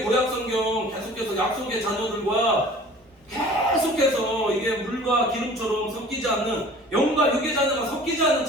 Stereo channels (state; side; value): normal; both; correlation 0.46